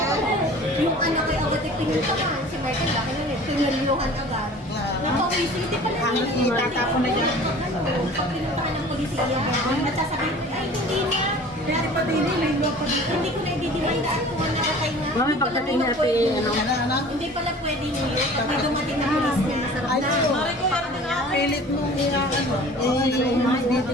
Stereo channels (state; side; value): normal; both; correlation 0.44